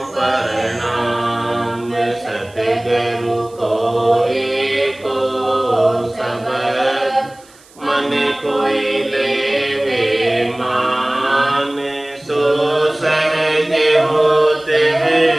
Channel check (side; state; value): right; noise; hiss, 27 dB below the sound